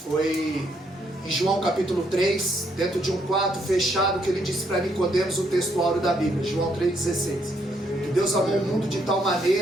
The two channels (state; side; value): normal; both; correlation 0.73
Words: Foi em João capítulo 3, dentro de um quarto fechado, que ele disse para Nicodemos o texto áureo da Bíblia, João 3,16. Que Deus amou o mundo de tal